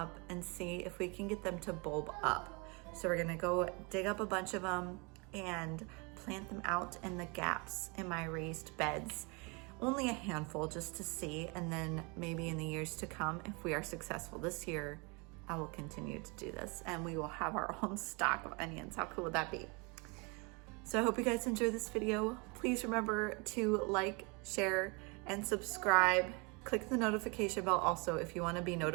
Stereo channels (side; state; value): left; quieter; 30.1 dB